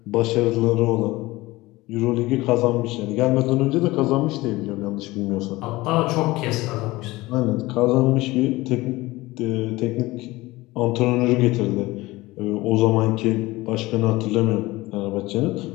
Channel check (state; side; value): quieter; right; 19.8 dB